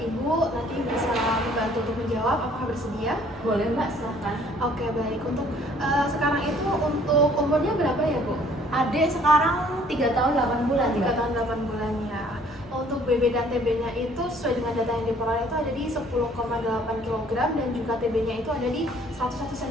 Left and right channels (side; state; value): both; normal; correlation 0.58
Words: nanti bisa membantu untuk menjawab. Apakah bersedia? Boleh mbak, silahkan. Oke, baik. Untuk sekarang itu untuk umurnya berapa ya, Bu? Adik sekarang 3 tahun 8 bulan 3 mbak. tahun 8 bulan ya. Untuk BB dan TB-nya itu sesuai dengan data yang diperoleh itu ada di 10,8 kg dan juga TB-nya itu ada di 101